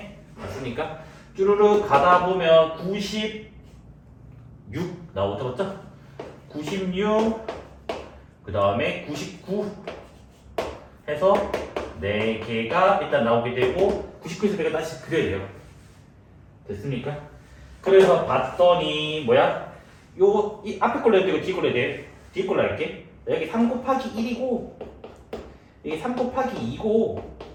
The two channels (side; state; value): both; identical; correlation 1.00